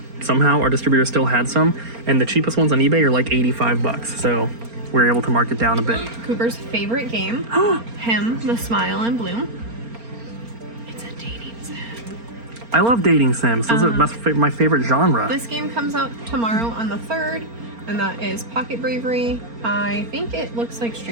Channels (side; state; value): left; late; 4.3 ms